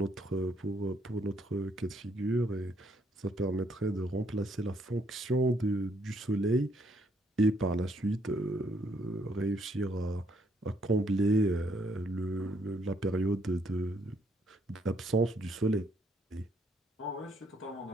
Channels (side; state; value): both; normal; correlation 0.70